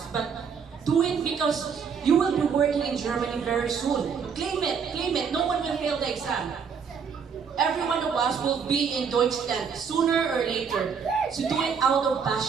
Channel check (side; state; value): left; quieter; 6.5 dB